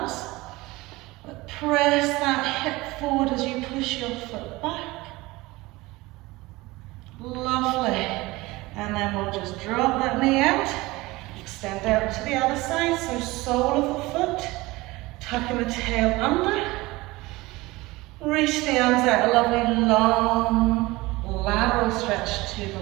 but press that hip forward as you push your foot back. Lovely. And then we'll just drop that knee out, extend out to the other side, so sole of the foot, tucking the tail under, reach the arms out, a lovely long lateral stretch to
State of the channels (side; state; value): left; quieter; 20.9 dB